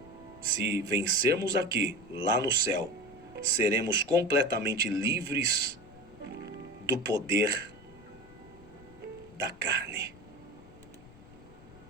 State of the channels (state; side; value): noise; left; rumble, 22 dB below the sound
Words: Se vencermos aqui, lá no céu, seremos completamente livres do poder da carne.